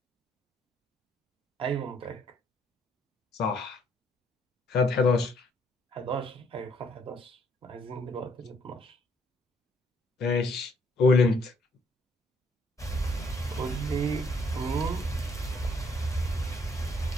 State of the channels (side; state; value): both; normal; correlation 0.68